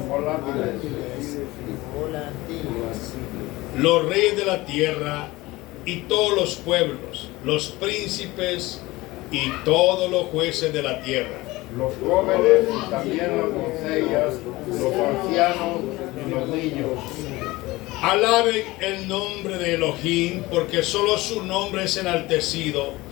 volátiles. Los reyes de la tierra y todos los pueblos, los príncipes y todos los jueces de la tierra. Los jóvenes y también las doncellas, los ancianos y los niños. Alaben el nombre de Elohim, porque solo su nombre es enaltecido,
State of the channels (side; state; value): right; quieter; 20.2 dB